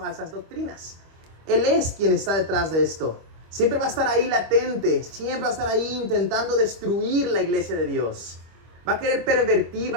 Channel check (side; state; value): left; late; 25 ms